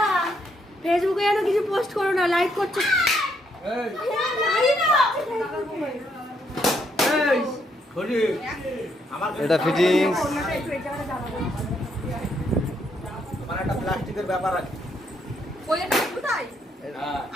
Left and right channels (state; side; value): normal; both; correlation 0.73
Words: ফেসবুকে যেন কিছু পোস্ট করো না, লাইক করছো। এটা ফিটিংস। আমার একটা প্লাস্টিকের ব্যাপার আছে। ওইটা কোথায়?